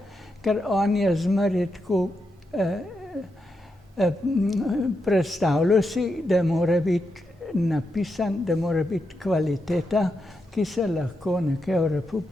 ker on je zmeraj tako predstavljal si, da mora biti napisan, da mora biti kvaliteta, ki se lahko nekje v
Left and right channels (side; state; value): both; normal; correlation 0.85